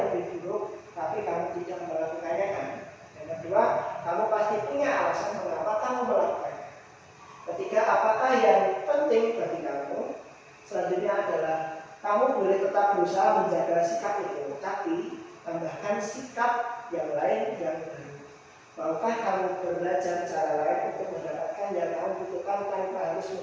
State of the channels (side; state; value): both; identical; correlation 1.00